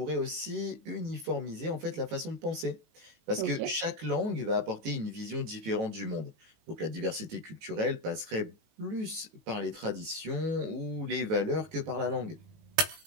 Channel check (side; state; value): left; late; 18 ms